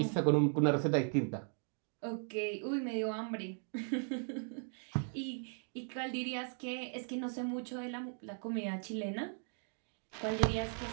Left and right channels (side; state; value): left; silent; 53 dB below the other